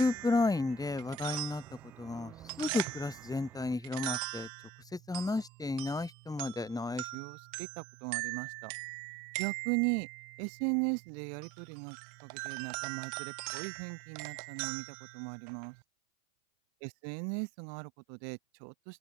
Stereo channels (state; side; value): drops out; left; at 7.2 s